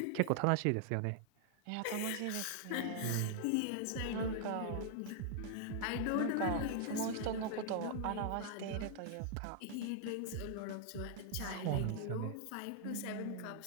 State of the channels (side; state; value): both; different; correlation 0.00